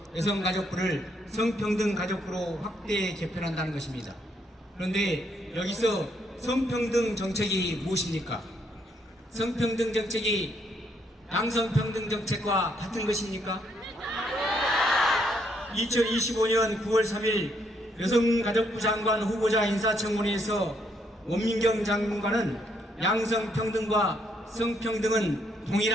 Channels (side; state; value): both; normal; correlation 0.73